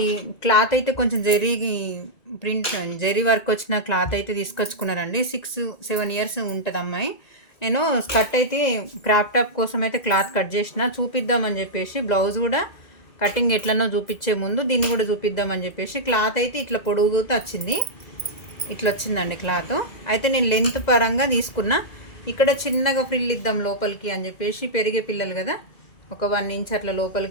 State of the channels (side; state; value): right; late; 2.0 ms